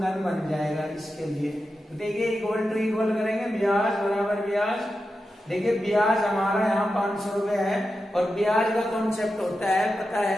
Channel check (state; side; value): normal; both; correlation 0.90